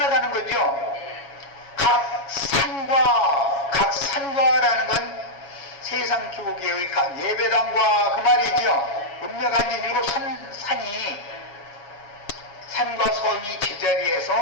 거죠. 각 산과 각 세상 교계의 각 예배당과 그 말이죠. 음력한지 일곱 산이 산과 섬이 제자리에서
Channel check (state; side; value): late; right; 7.2 ms